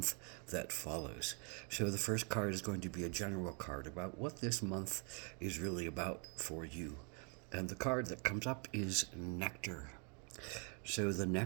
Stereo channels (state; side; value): quieter; left; 36.9 dB